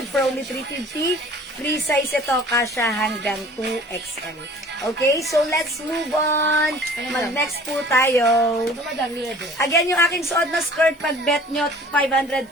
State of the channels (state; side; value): normal; both; correlation 0.48